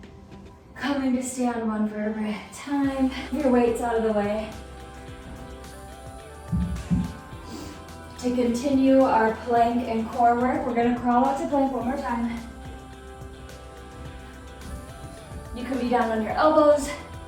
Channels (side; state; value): both; identical; correlation 1.00